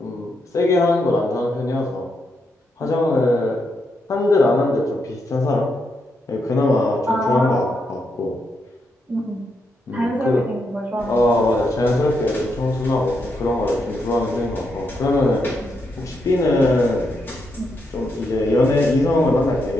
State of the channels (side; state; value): both; normal; correlation 0.81